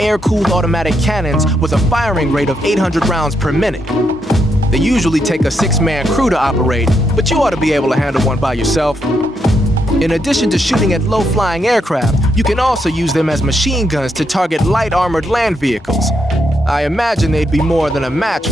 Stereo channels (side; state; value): both; normal; correlation 0.79